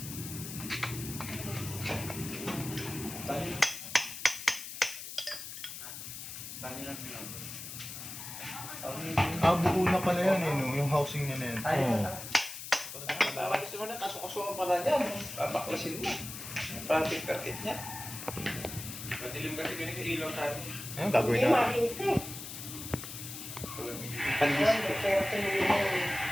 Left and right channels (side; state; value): left; noise; hiss, 9 dB below the sound